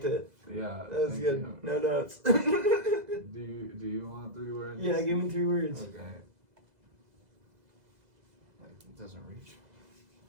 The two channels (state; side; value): late; left; 2.0 ms